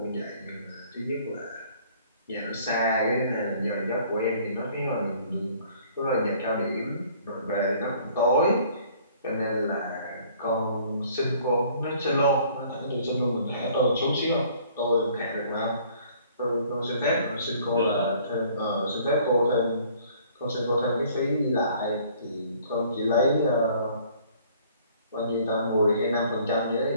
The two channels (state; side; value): inverted; both; correlation -0.56